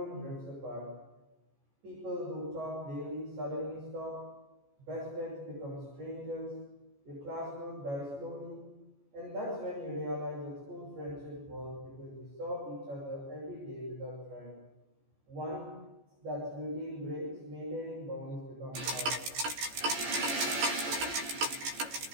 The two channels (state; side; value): late; left; 14 ms